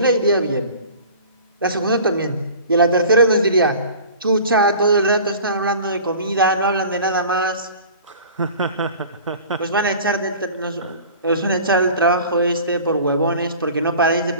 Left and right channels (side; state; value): both; inverted; correlation -0.42